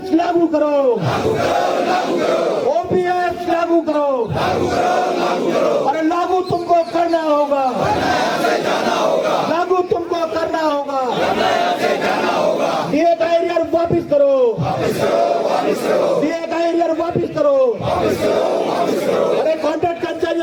लागू करो, ओपीएस लागू करो, अरे लागू तुमको करना होगा, लागू तुमको करना होगा। डीए का एरियर वापिस करो, डीए का एरियर वापिस करो। अरे कॉन्ट्रैक्ट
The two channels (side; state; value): both; identical; correlation 1.00